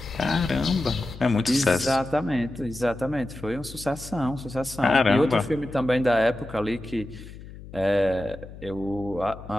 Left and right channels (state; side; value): noise; left; hum, 15 dB below the sound